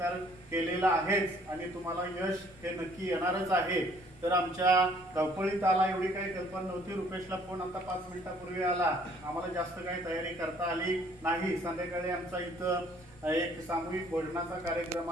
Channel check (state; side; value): noise; left; rumble, 23 dB below the sound